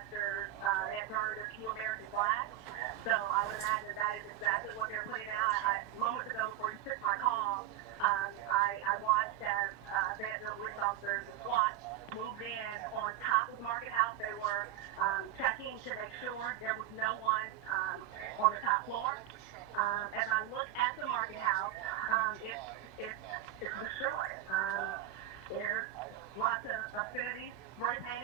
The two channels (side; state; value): left; quieter; 12.1 dB